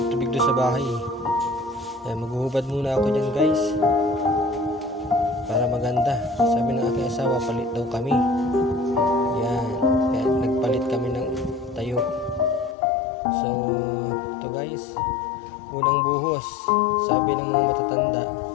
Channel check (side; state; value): right; drops out; at 12.8 s